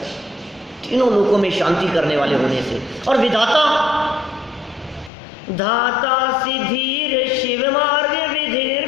तीनों लोकों में शांति करने वाले होने से। और विधाता, धाता सिद्धीर शिव मार्ग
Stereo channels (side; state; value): right; drops out; at 5.1 s